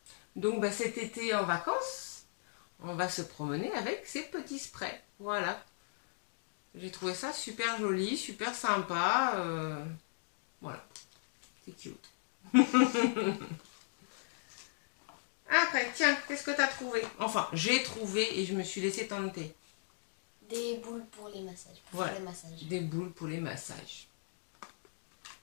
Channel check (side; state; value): right; silent; digital silence